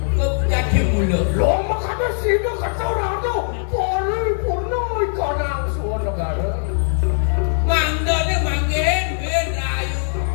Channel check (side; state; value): right; silent; digital silence